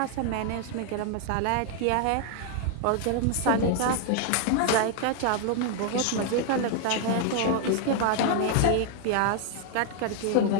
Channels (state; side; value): different; both; correlation 0.00